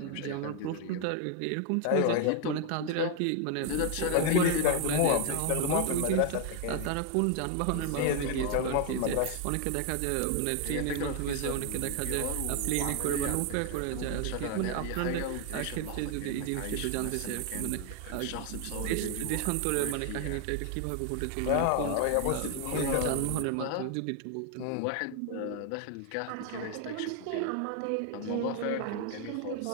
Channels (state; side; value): different; both; correlation 0.01